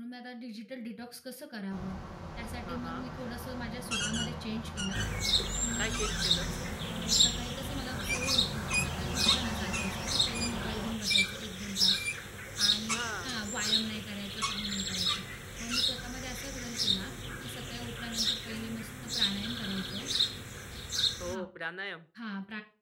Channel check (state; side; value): identical; both; correlation 1.00